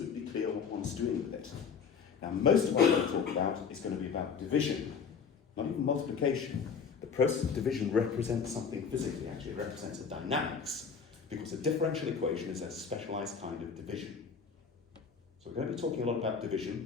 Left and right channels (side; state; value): right; quieter; 6.1 dB